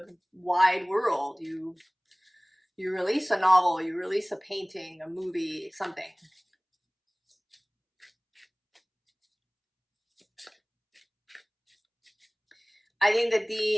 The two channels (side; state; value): both; identical; correlation 1.00